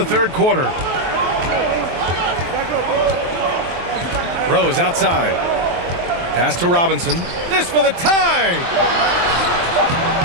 third quarter. Rose outside. Pass to Robinson. This for the tie!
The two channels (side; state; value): left; late; 23 ms